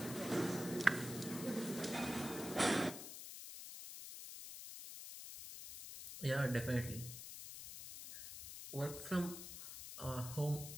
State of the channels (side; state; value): left; noise; hiss, 10 dB below the sound